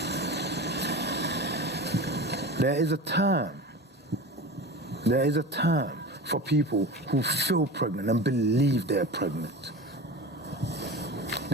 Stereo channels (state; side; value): normal; both; correlation 0.31